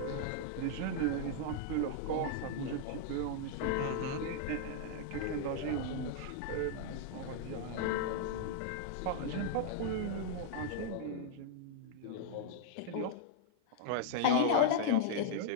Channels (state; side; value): different; both; correlation -0.01